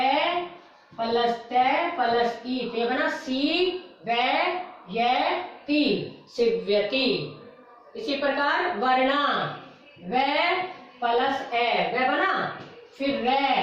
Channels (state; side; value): identical; both; correlation 1.00